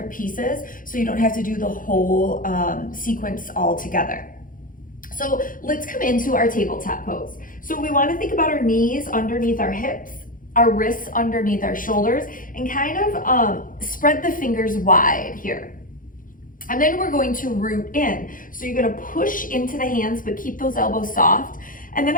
pieces so you don't have to do the whole sequence all together. So let's come into our tabletop pose. So we want to think about our knees underneath our hips, our wrists underneath our shoulders, and kind of spread the fingers wide here. And then we're going to root in. So you're going to push into the hands, but keep those elbows soft. And then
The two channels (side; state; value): right; late; 0.40 ms